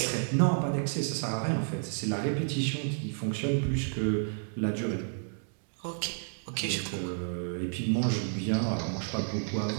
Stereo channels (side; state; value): left; silent; digital silence